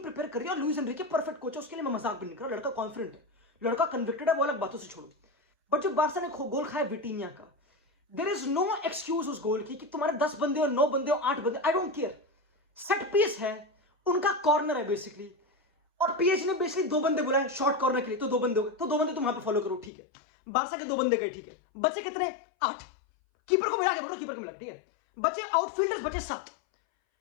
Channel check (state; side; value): drops out; right; at 19.9 s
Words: प्रिपेयर कर रही है, और लुइस एनरिके परफेक्ट कोच है, उसके लिए मैं मजाक भी नहीं कर रहा। लड़का कॉन्फिडेंट है, लड़का कन्विक्टेड है, वो अलग बातों से छोड़ो। बट जो बार्सा ने गोल खाया विटीनिया का, देयर इज नो एक्सक्यूज उस गोल की कि तुम्हारे 10 बंदे हो, 9 बंदे हो, 8 बंदे, I don't care. Set piece है, उनका कॉर्नर है बेसिकली, और पीएसजी ने बेसिकली 2 बंदे बुलाए शॉर्ट कॉर्नर के लिए, तो 2 बंदे हो गए, तो 2 बंदे तुम वहां पे फॉलो करो, ठीक है। बार्सा के 2 बंदे गए, ठीक है। बचे कितने? 8। कीपर को मिला के बोलो, कीपर को मिला, ठीक है। बचे आउटफील्डर्स, बचे 7।